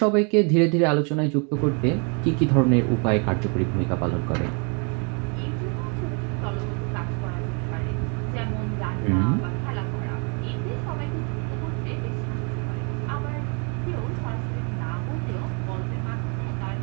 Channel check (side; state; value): left; quieter; 35.9 dB